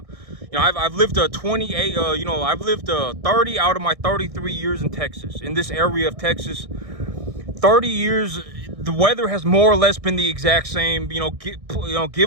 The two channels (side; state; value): left; late; 1.6 ms